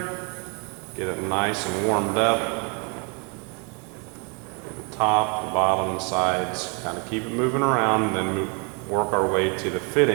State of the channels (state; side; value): quieter; left; 34.4 dB